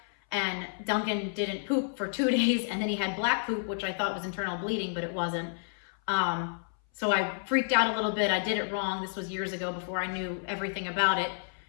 And Duncan didn't poop for 2 days, and then he had black poop, which I thought was internal bleeding, but it wasn't. So I freaked out a little bit. I did it wrong. This was years ago before I knew everything about it.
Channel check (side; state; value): right; silent; 58 dB below the other